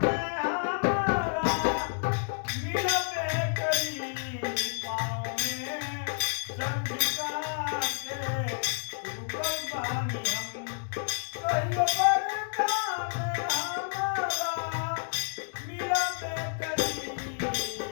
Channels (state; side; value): silent; right; 58 dB below the other